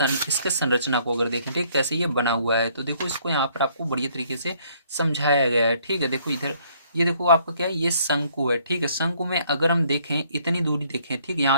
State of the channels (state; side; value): inverted; both; correlation -0.64